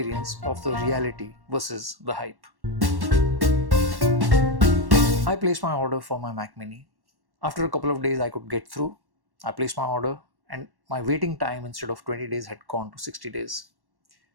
of the reality versus the hype. I placed my order for my Mac Mini. After a couple of days I could get through. I placed my order and my waiting time instead of 20 days had gone to 60 days.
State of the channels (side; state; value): left; late; 1.1 ms